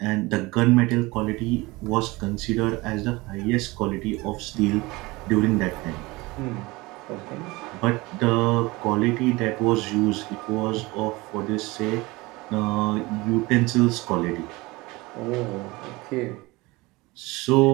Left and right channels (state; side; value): quieter; left; 22.4 dB